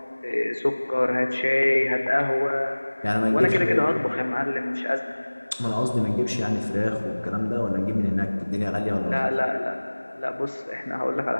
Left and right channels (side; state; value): both; inverted; correlation -1.00